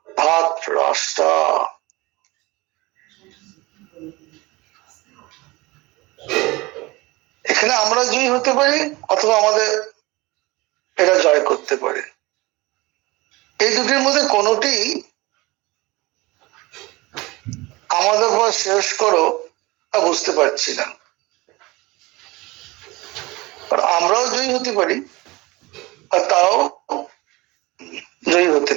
ধাতরাষ্ট্রা। এখানে আমরা জয়ী হতে পারি অথবা আমাদের এরা জয় করতে পারে। এই দুটির মধ্যে কোনটি আমাদের উপর শেষ করো তা বুঝতে পারছি না। আমরাও জয়ী হতে পারি আর তারাও জয়ী হতে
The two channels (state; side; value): quieter; left; 22.3 dB